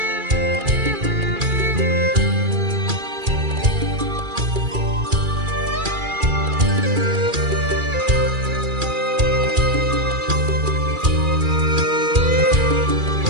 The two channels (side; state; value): left; late; 2.4 ms